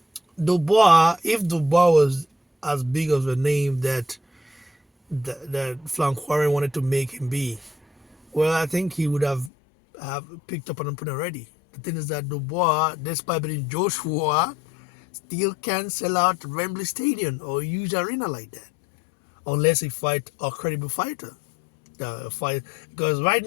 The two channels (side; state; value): right; drops out; at 9.5 s